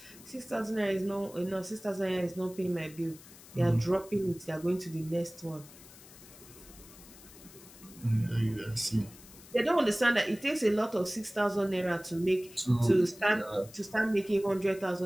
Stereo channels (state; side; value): noise; left; hiss, 20 dB below the sound